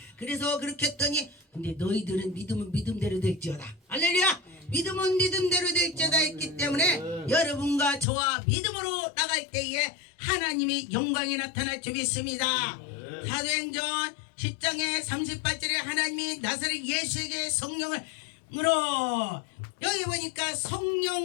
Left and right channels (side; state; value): right; drops out; at 8.1 s